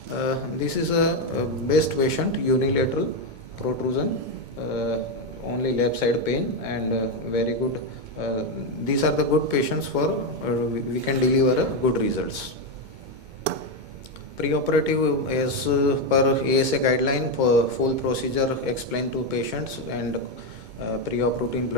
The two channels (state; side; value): late; left; 2.2 ms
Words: this is a best patient, unilateral protrusion, only left side pain, and very good. These are the good patients for we can deliver good results. Preoperative, as per ASA guideline, for full procedure explained to patients, and pre-op routine